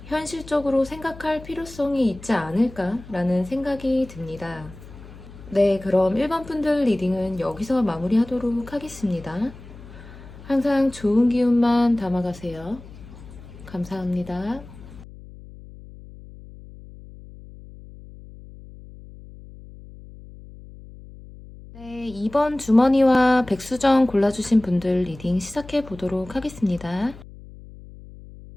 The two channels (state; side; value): noise; left; hum, 18 dB below the sound